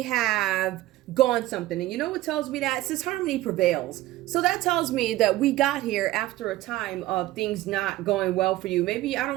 have gone something. And you know what tells me that? It says harmony prevails. So that tells me that we got here after a time of things not going well for you. Maybe, I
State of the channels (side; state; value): left; quieter; 16.3 dB